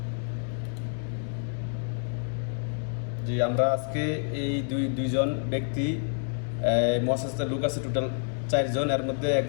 জি, আমরা আজকে এই দুইজন ব্যক্তি মহাসাস্তার লোক আছে টোটাল 4 জন। এর মধ্যে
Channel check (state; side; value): silent; right; 56 dB below the other